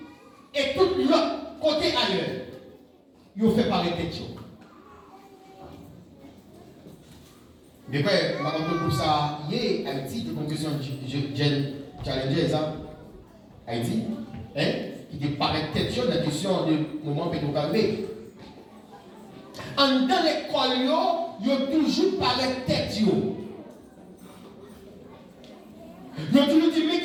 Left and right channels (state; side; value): identical; both; correlation 1.00